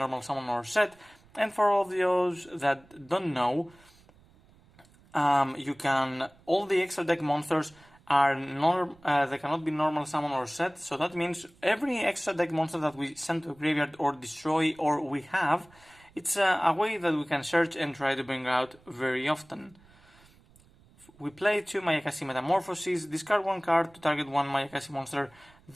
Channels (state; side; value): noise; right; rumble, 28 dB below the sound